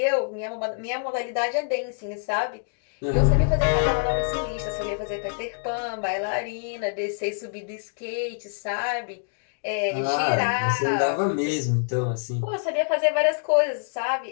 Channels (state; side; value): silent; right; digital silence